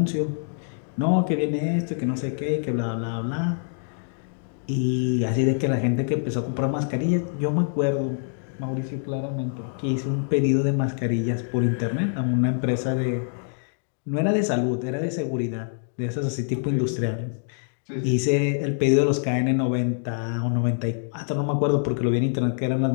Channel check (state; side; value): silent; right; 62 dB below the other